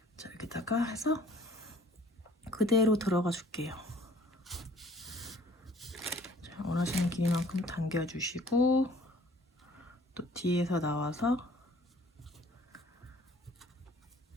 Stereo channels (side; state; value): both; normal; correlation 0.54